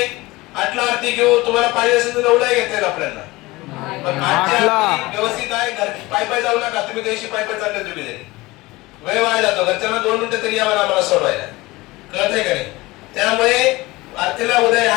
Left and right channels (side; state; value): right; quieter; 20.8 dB